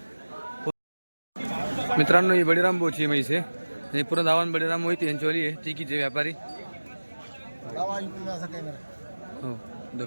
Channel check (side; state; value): both; inverted; correlation -1.00